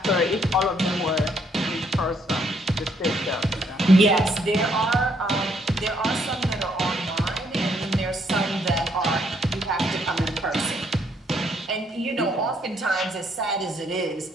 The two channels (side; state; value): both; normal; correlation 0.70